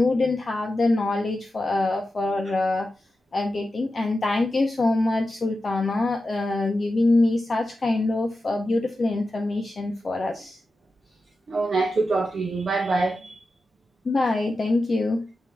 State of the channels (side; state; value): both; normal; correlation 0.91